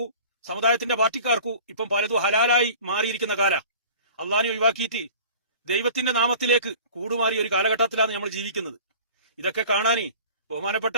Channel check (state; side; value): inverted; both; correlation -0.43